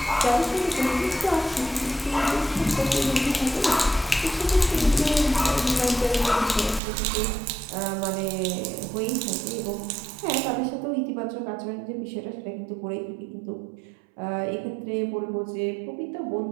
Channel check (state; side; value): drops out; left; at 6.8 s